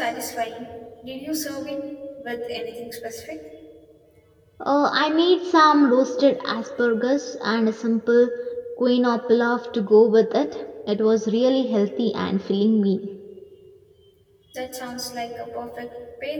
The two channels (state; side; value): identical; both; correlation 1.00